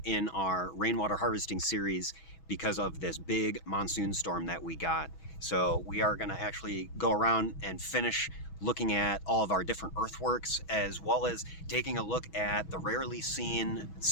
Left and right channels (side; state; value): right; late; 6.2 ms